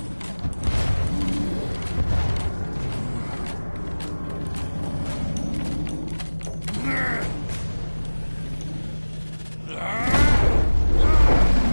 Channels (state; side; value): inverted; both; correlation -1.00